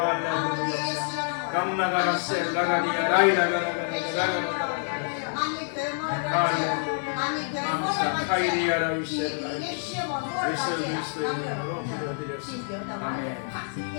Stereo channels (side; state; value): right; silent; digital silence